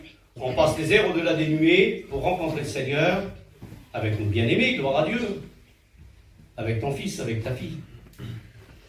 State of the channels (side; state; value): both; identical; correlation 1.00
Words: on passe les airs au-delà des nuées pour rencontrer le Seigneur avec nos bien-aimés, gloire à Dieu, avec ton fils, avec ta fille,